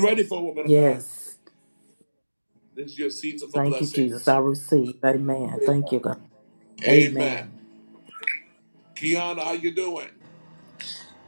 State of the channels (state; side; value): inverted; both; correlation -1.00